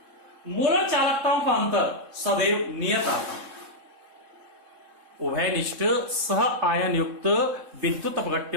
मोलर चालकताओं का अंतर सदैव नियत आता है। उभयनिष्ठ सह आयन युक्त विद्युत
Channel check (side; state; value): left; late; 3.7 ms